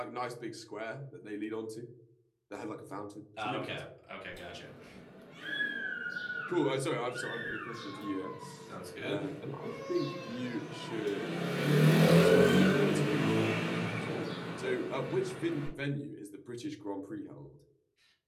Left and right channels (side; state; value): both; identical; correlation 1.00